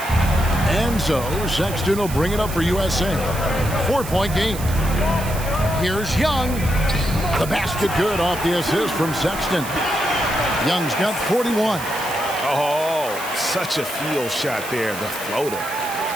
And so Sexton will bring it up for USA. 4-point game. Here's Young. The basket good off the assist from Sexton. Young's got 41. Oh, such a field shot there, the floater.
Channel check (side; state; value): right; noise; hiss, 11 dB below the sound